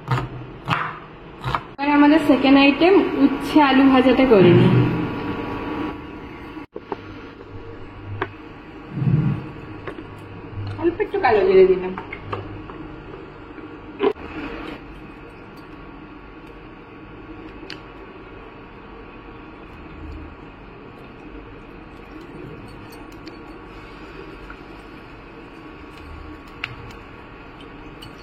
আমাদের 2nd আইটেম উচ্ছে আলু ভাজাটা করে নিই। কালো জিরে দিলাম।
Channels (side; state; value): both; identical; correlation 1.00